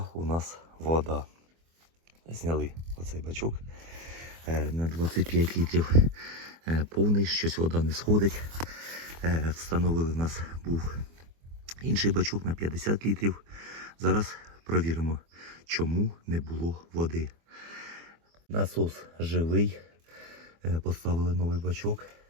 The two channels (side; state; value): left; late; 24 ms